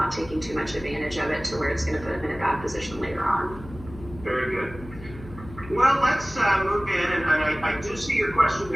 taking too much advantage of it to where it's going to put them in a bad position later on. Very good. Well, let's move in, and I do see your question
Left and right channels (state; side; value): noise; left; hum, 16 dB below the sound